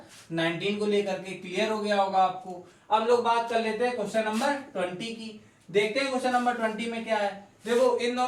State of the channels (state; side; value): identical; both; correlation 1.00